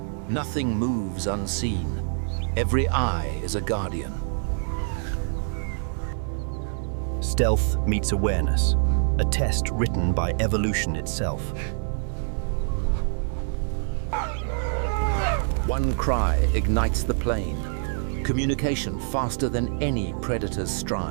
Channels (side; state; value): left; silent; digital silence